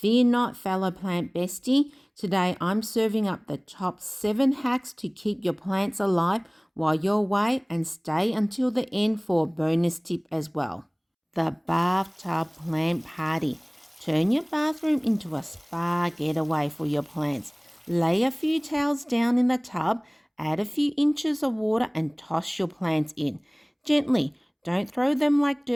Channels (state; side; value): identical; both; correlation 1.00